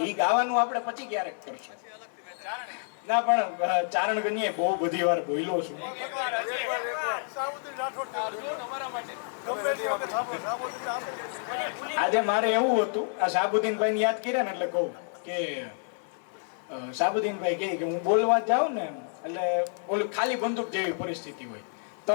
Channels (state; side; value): silent; right; 59 dB below the other